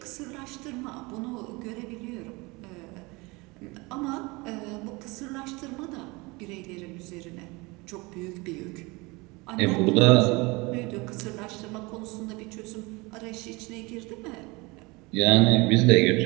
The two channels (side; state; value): left; quieter; 25.0 dB